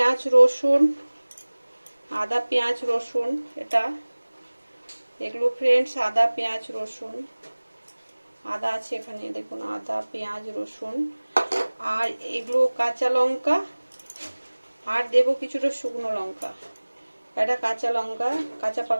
রসুন, এটা এগুলো ফ্রেন্ডস আদা পেঁয়াজ রসুন, আদা আছে এখানে, দেখুন আদা পেঁয়াজ রসুন। আর এগুলো কাঁচা লঙ্কা, আর দেবো কিছুটা শুকনো লঙ্কা। এটা কাঁচা লঙ্কা, কাঁচা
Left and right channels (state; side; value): inverted; both; correlation -1.00